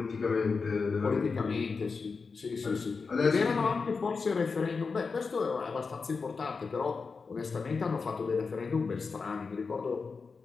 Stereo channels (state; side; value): quieter; right; 4.8 dB